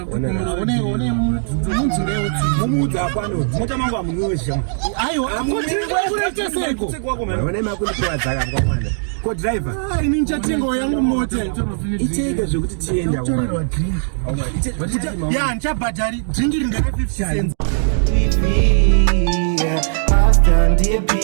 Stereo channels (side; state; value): left; silent; digital silence